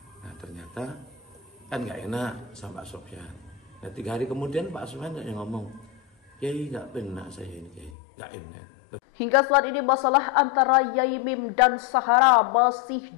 Nah, ternyata kan nggak enak sama Pak Sofyan. Nah, 3 hari kemudian Pak Sofyan yang ngomong, Yai nggak benar saya ini, Yai nggak enak. Hingga saat ini masalah antara Yaimim dan Sahara masih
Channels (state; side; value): drops out; right; at 8.0 s